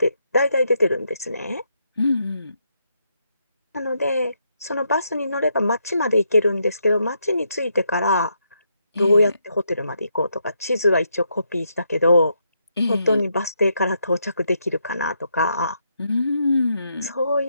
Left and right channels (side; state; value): both; inverted; correlation -0.78